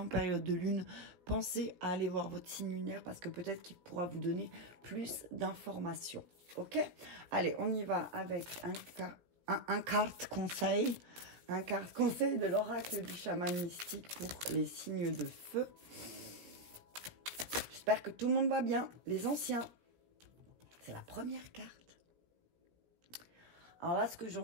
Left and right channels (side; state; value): left; late; 17 ms